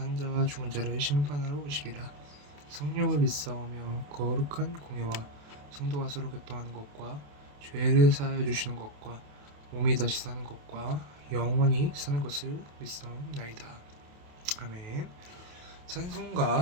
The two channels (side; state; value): left; late; 28 ms